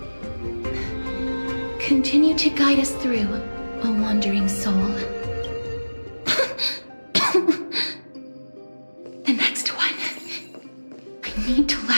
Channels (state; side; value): inverted; both; correlation -1.00